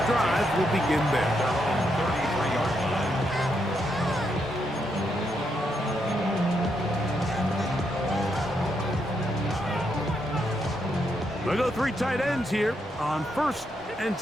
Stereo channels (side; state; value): both; normal; correlation 0.79